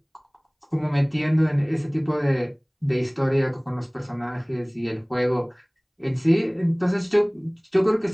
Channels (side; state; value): both; identical; correlation 1.00